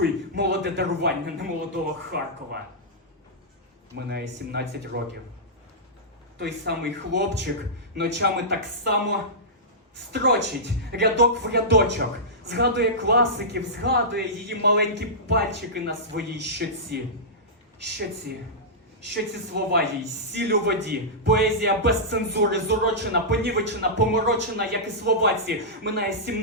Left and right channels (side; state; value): both; normal; correlation -0.14